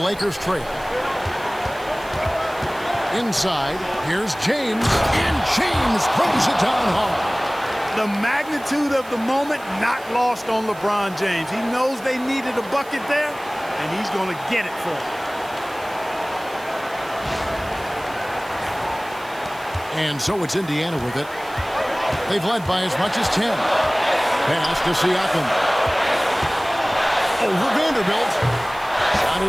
trail. Inside, here's James, and James throws it down hard. The magnitude of the moment not lost on LeBron James. He knows they needed a bucket there, and he's going to get it for them. And so it's Indiana with it. They've led by as much as 10. Pass to Siakam. Over Vanderbilt. Shot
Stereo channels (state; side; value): noise; right; hiss, 21 dB below the sound